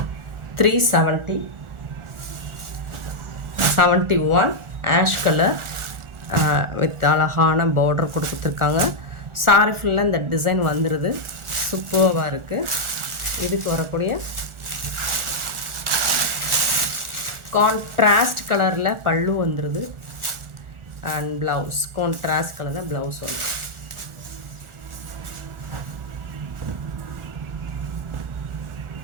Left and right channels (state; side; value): late; left; 1.4 ms